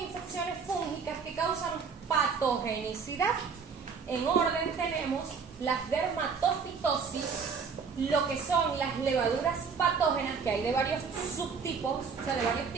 infecciones fúngicas que causan patogenicidad. En orden tenemos las dermatofitosis, lo que son las levaduras patógenas, que hay de varios subtipos, o sea, de varios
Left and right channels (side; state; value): left; quieter; 5.6 dB